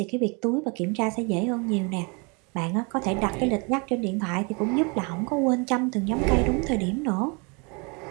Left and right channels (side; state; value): left; quieter; 31.9 dB